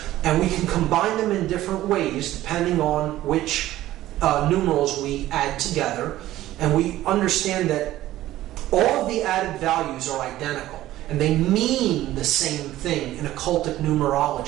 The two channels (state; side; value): quieter; left; 14.8 dB